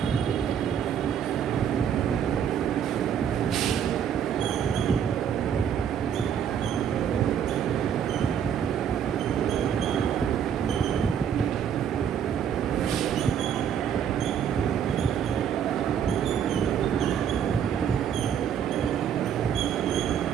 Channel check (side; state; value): left; quieter; 8.5 dB